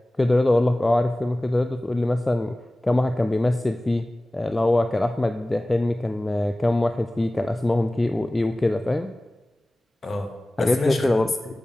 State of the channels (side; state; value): both; normal; correlation 0.98